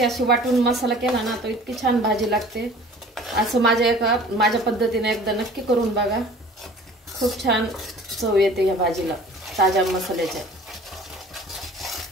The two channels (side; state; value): both; normal; correlation 0.47